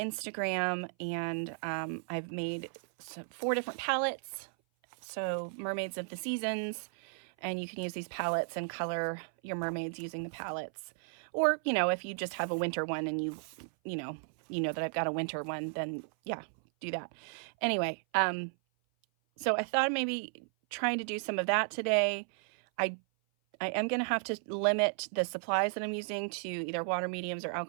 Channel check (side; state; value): left; silent; 55 dB below the other